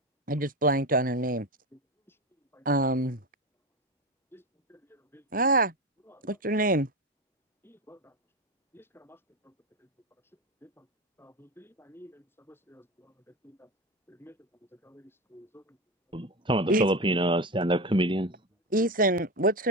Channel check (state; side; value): normal; both; correlation 0.19